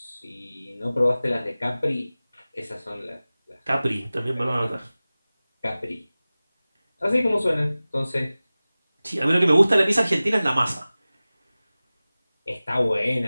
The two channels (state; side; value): inverted; both; correlation -0.97